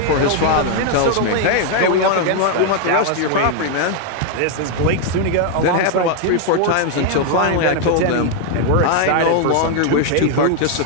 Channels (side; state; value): both; different; correlation 0.00